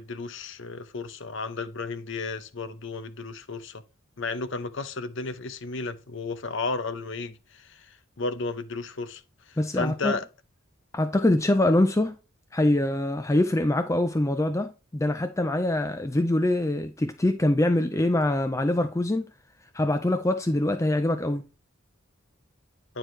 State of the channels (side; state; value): both; normal; correlation 0.77